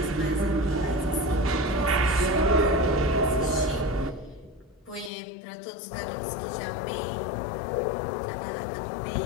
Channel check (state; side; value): drops out; right; at 5.1 s